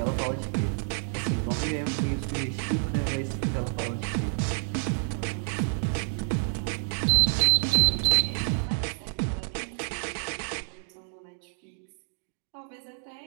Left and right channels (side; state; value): left; silent; digital silence